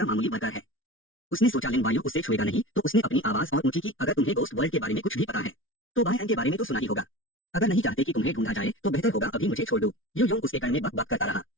मामूली वर्कर है। उसने सोचा लिन वायु उससे छुएगा नहीं, तो उसने अपनी आवाज और ऊंची की, अगर तुम्हें गोस्ट वर्ल्ड के बारे में कुछ भी पता है तो बाय एंड के बारे में तो सुना ही होगा। अगर नहीं चाहते कि तुम्हें ढूंढा जाए तो बेहतर होगा अभी मुझे छोड़ दो। यू योंग उसके कान में बक बक करता रहा।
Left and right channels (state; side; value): late; right; 0.57 ms